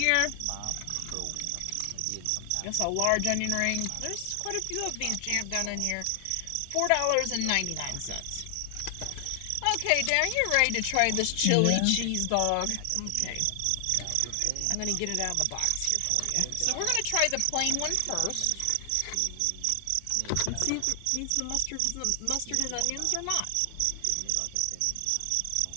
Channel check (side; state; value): both; different; correlation 0.00